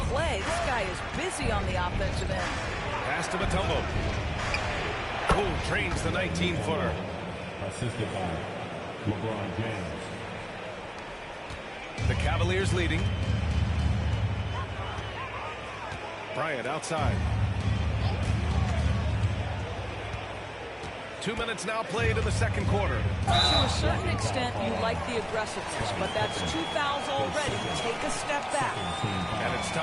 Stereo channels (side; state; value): both; identical; correlation 1.00